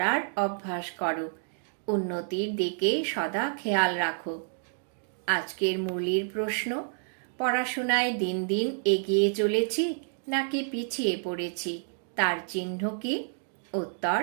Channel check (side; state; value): left; silent; digital silence